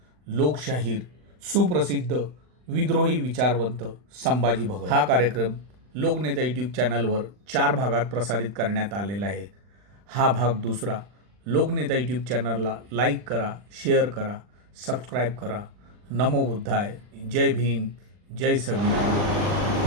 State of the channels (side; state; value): left; late; 40 ms